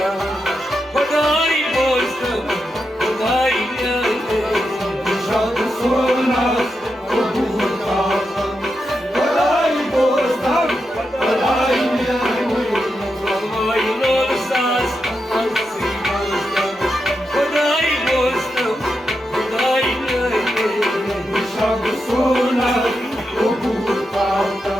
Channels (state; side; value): normal; both; correlation 0.86